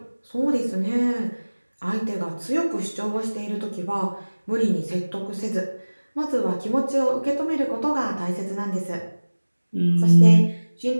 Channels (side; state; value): both; inverted; correlation -1.00